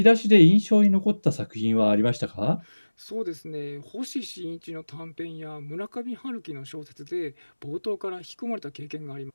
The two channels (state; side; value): inverted; both; correlation -1.00